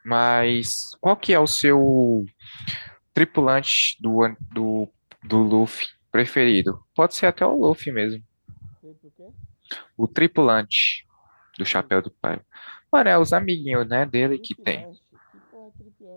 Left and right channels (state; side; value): inverted; both; correlation -1.00